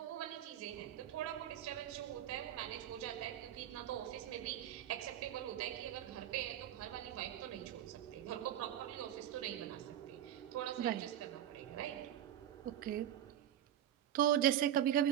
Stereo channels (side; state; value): left; quieter; 11.1 dB